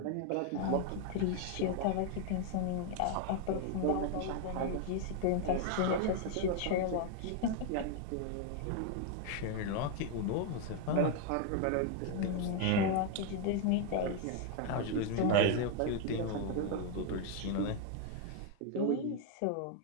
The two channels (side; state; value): both; different; correlation 0.01